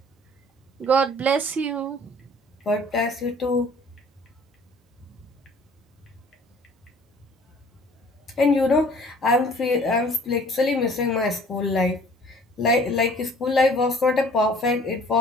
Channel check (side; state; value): both; normal; correlation 0.52